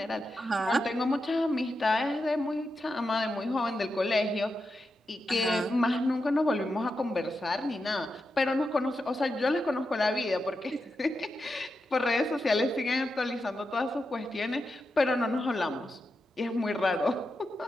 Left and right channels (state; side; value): normal; both; correlation 0.88